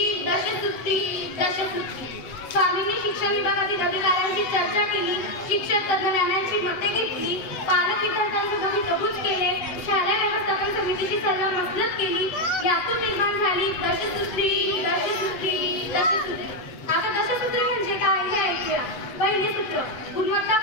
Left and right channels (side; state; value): right; late; 8.0 ms